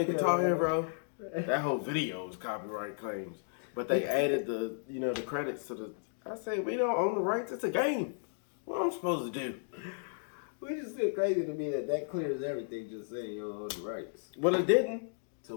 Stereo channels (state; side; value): silent; right; digital silence